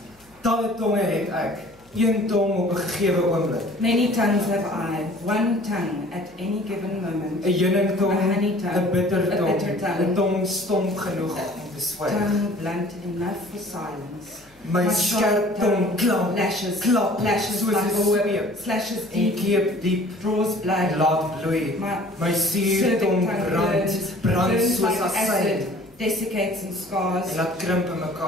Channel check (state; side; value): noise; left; hum, 30 dB below the sound